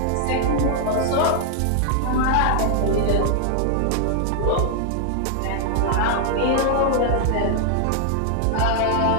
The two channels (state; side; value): different; both; correlation 0.00